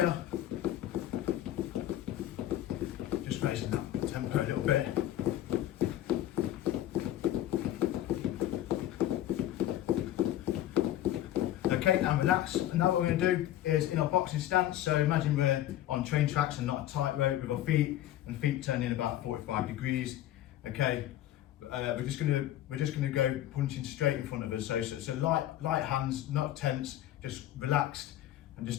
Just raising that tempo a little bit. Okay, and relax. And now what we're going to do is in our boxing stance, so imagine we're on train tracks and not a tightrope with our feet, and feet turned in about 45 degrees. Okay, we're just going to go punching straight in front of us. So light hands, not tense, just relaxed and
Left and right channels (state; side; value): quieter; right; 13.0 dB